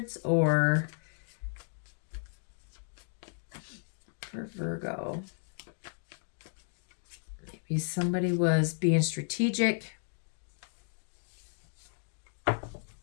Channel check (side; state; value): right; silent; digital silence